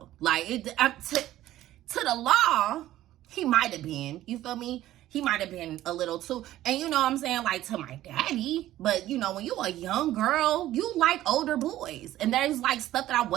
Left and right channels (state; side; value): quieter; left; 14.2 dB